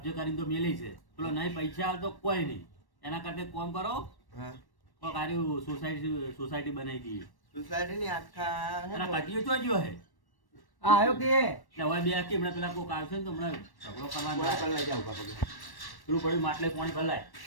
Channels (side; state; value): right; late; 1.1 ms